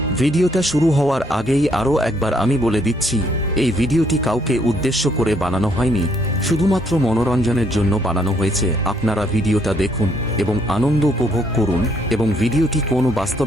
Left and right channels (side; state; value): both; normal; correlation 0.69